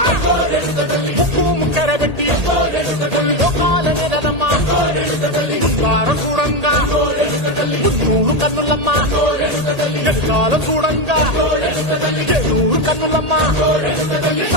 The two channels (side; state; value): left; late; 1.8 ms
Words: ముక్కు ముక్కెర పెట్టి ముల్లోకాల నెలదమ్మా ముందార చూడంగా మున్నూరు కన్నులమ్మా ఎదుకాల చూడంగా ఏనూరు కన్నులమ్మా